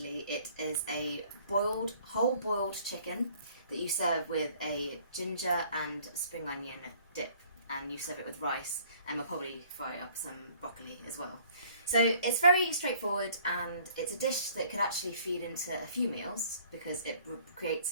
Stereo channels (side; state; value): both; inverted; correlation -0.57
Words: it is a whole boiled chicken that you serve with a ginger and spring onion dip, and you serve it with rice, and we'll probably fry up some broccoli as well. So it's very straightforward, and it's a dish that could actually feed into a few meals because it